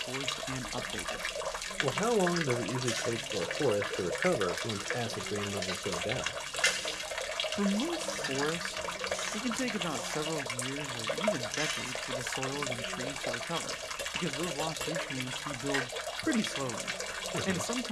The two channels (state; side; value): identical; both; correlation 1.00